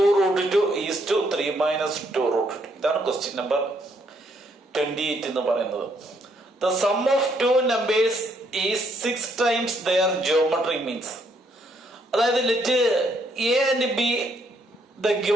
2 is to 3 minus 2 root 2. ഇതാണ് question number 28 എന്ന് പറയുന്നത്. The sum of two numbers is 6 times their geometric means. അതായത് let a and b the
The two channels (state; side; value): normal; both; correlation 0.71